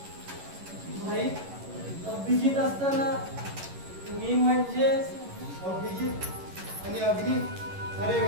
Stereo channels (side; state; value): left; late; 11 ms